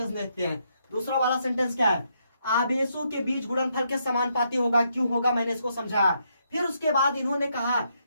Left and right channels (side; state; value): both; inverted; correlation -0.76